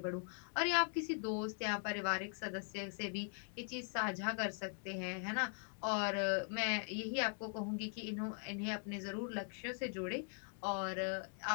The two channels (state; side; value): silent; right; 50 dB below the other